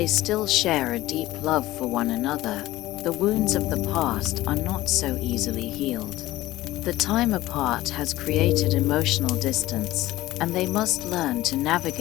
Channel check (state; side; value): quieter; right; 16.6 dB